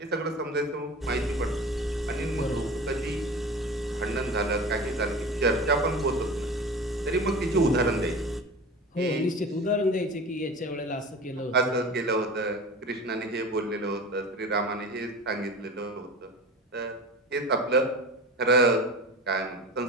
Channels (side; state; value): both; normal; correlation 0.34